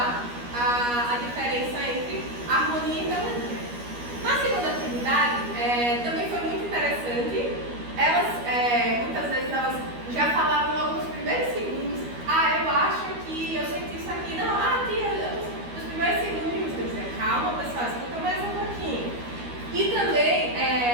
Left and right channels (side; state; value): left; late; 12 ms